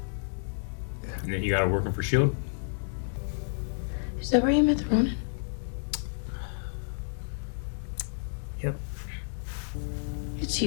And then you got her working for S.H.I.E.L.D.? Is that where you met the Ronin? Yep. It's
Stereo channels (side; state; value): right; silent; digital silence